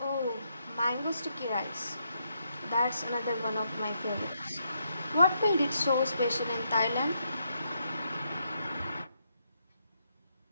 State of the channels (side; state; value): both; inverted; correlation -0.78